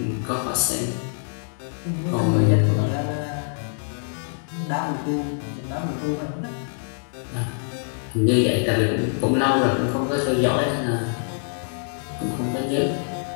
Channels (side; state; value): right; silent; digital silence